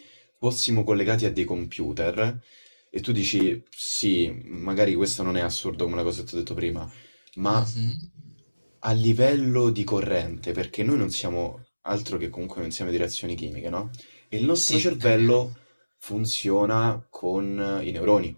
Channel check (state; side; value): inverted; both; correlation -1.00